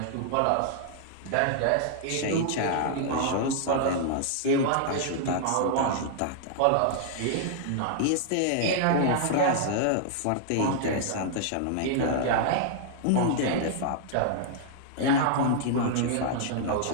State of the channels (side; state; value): both; different; correlation -0.01